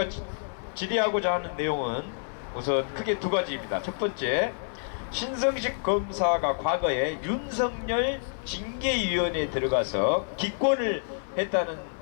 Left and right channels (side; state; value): right; silent; 58 dB below the other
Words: 질의하고자 하는 내용은 우선 크게 두 가지입니다. 첫 번째, 신성식 검사가 과거에 윤석열 징계위원회에 들어가서 기권을 했다는